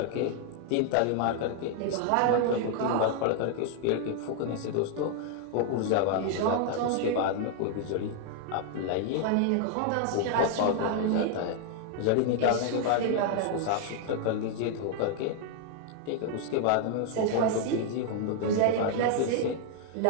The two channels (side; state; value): both; different; correlation 0.00